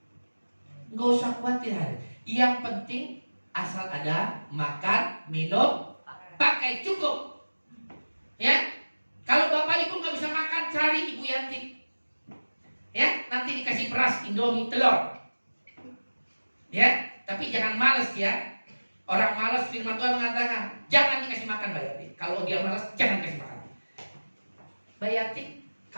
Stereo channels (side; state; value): both; inverted; correlation -1.00